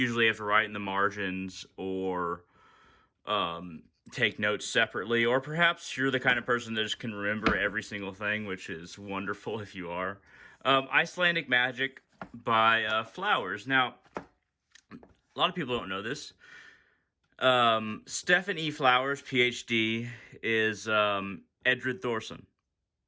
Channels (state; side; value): identical; both; correlation 1.00